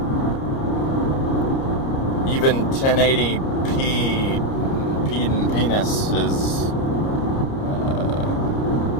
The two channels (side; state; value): right; late; 30 ms